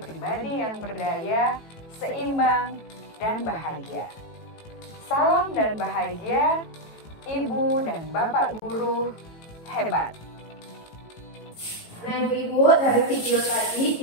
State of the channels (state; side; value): late; right; 18 ms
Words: pribadi yang berdaya, seimbang, dan bahagia. Salam dan bahagia, Ibu dan Bapak guru hebat. Nah Ibu-Ibu, dari video tadi